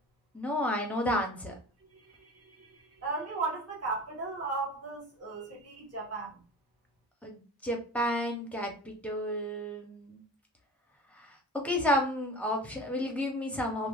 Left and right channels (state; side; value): normal; both; correlation 0.38